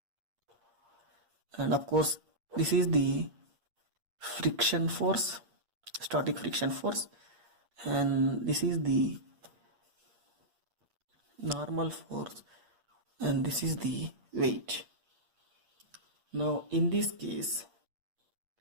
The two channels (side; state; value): left; late; 8.6 ms